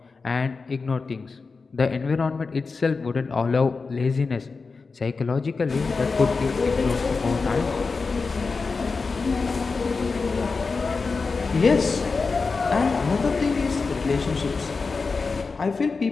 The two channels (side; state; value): right; quieter; 4.4 dB